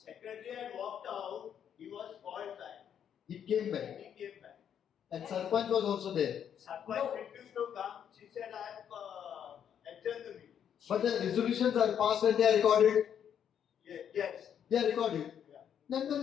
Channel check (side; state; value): right; quieter; 8.8 dB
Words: had walked out, he was called back. He came back. He came back. And Sarpanch was also there. Sarpanch refused to come. She said, I have adjourned the meeting. But the resolutions are passed and they are recorded. Yes. They are recorded. Yeah. Then the